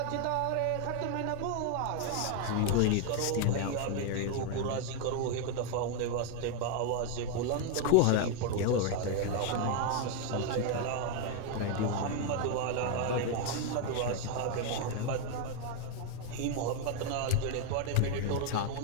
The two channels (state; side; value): different; both; correlation 0.01